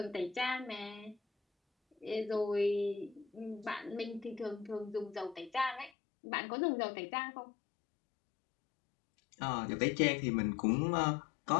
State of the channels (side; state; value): right; drops out; at 5.9 s